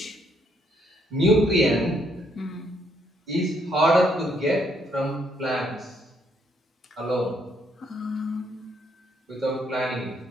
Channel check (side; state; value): both; normal; correlation 0.71